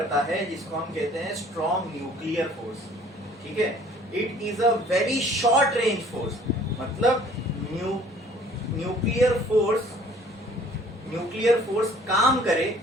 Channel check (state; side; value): normal; both; correlation 0.54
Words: है जिसको हम कहते हैं स्ट्रॉन्ग न्यूक्लियर फोर्स। ठीक है, it is a very short range force, मतलब न्यूक्लियर फोर्स काम करे